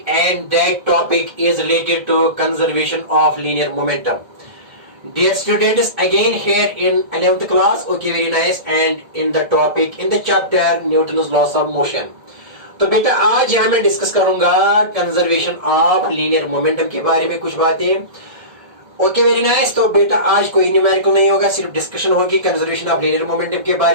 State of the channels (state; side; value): late; left; 1.7 ms